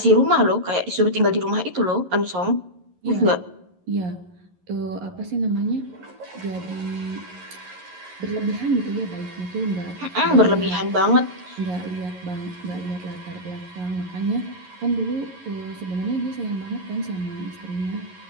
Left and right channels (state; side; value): late; left; 11 ms